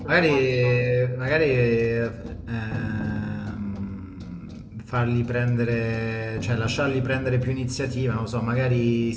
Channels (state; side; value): identical; both; correlation 1.00